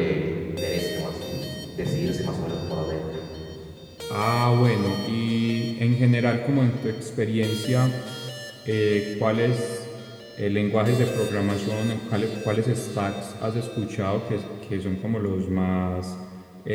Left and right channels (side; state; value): both; identical; correlation 1.00